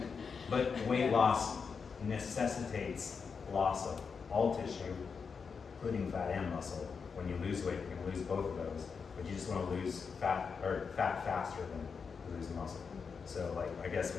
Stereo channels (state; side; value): quieter; right; 5.7 dB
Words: but weight loss necessitates loss of all tissue, including fat and muscle. When you lose weight, you're gonna lose both of those, but you just wanna lose fat faster than lose muscle. So like, I guess